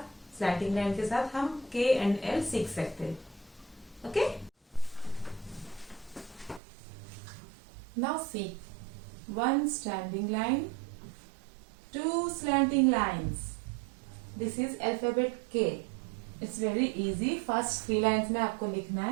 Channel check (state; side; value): drops out; left; at 6.6 s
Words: slanting line के साथ हम के and L सीख सकते हैं. Okay. Now see. One standing line, two slanting lines. This is alphabet K. It's very easy. First 3 lines में आपको लिखना